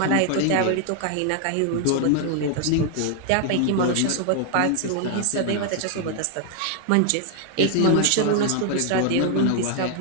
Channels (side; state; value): both; different; correlation 0.00